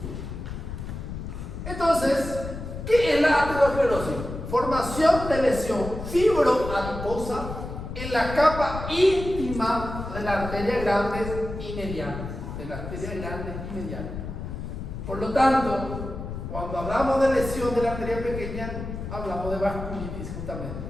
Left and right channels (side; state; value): left; noise; rumble, 7 dB below the sound